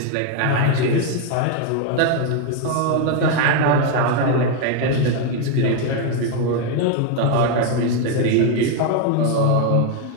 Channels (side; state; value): both; different; correlation 0.01